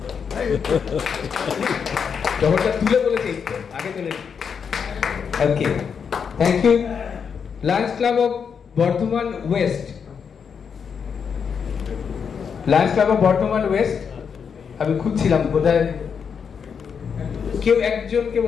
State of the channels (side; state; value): right; quieter; 6.6 dB